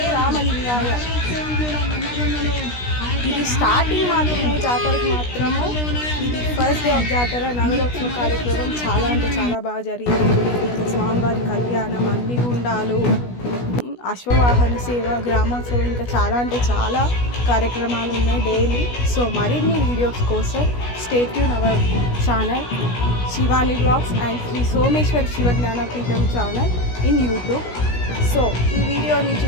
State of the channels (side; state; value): right; late; 16 ms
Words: రామలింగాయ. ఇది స్టార్టింగ్ మాత్రమే, జాతరకు మాత్రము. ఇది ఫస్ట్ డే ఆఫ్ జాతర నగరోత్సవ కార్యక్రమం చాలా బాగా జరిగింది. స్వామివారి కళ్యాణం, అగ్నిగుండాలు, అశ్వవాహన సేవ, గ్రామోత్సవం, ఇంకా చాలా కార్యక్రమాలు ఉన్నాయి డైలీ. సో మరిన్ని వీడియోస్ కోసం stay tune our channel Shivani blogs and Sri Someshwara Shiva Jnanapeetham channel in YouTube. So ఈ వీడియోని